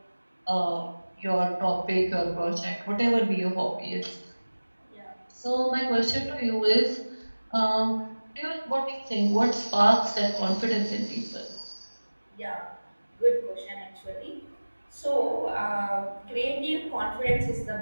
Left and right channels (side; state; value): both; inverted; correlation -1.00